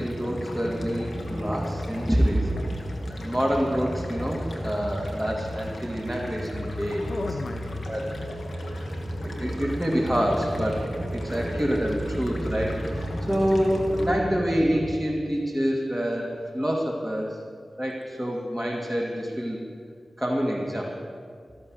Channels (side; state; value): both; normal; correlation 0.97